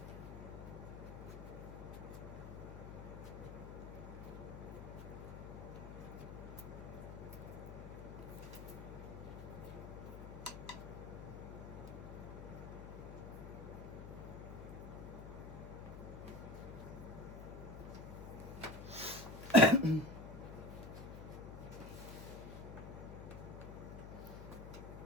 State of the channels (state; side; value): noise; left; hum, 9 dB below the sound